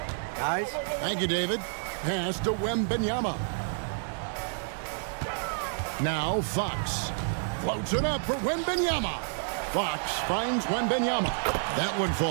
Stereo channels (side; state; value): left; silent; 58 dB below the other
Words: Guys? Thank you, David. Pass to Wembanyama. Now Fox. Floats it up for Wembanyama. Fox finds Wembanyama. That one